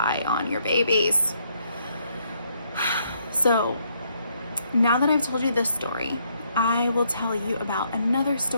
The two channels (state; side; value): inverted; both; correlation -0.72